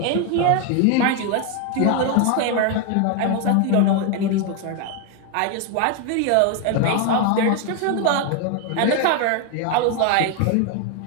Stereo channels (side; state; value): both; different; correlation 0.01